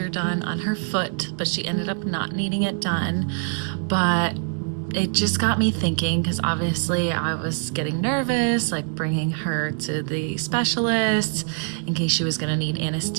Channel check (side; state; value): left; silent; 56 dB below the other